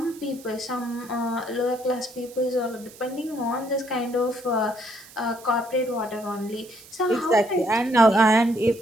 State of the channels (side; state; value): right; noise; hiss, 21 dB below the sound